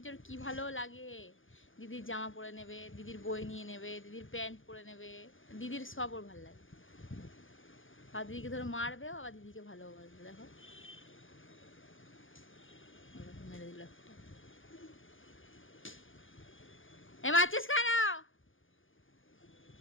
যে ওর কি ভালো লাগে। দিদির জামা পরে নেবে, দিদির বই নিয়ে নেবে, দিদির প্যান্ট পরে নেবে, দিদির সব ওর ভালো লাগে। আর দিদিকে ধরো মারবেও, আবার দিদিকে ভালোবাসবে। দেখো মেরে দিল একটা। এ মারছিস কেন?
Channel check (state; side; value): late; right; 0.58 ms